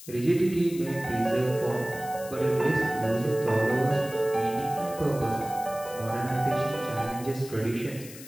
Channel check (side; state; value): left; noise; hiss, 16 dB below the sound